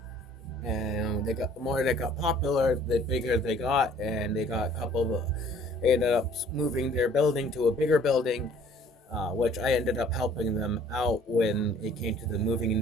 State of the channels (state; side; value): normal; both; correlation 0.55